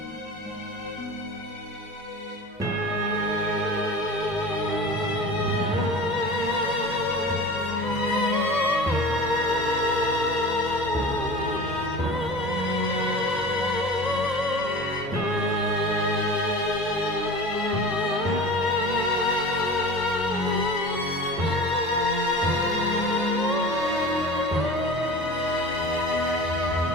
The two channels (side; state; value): both; normal; correlation 0.36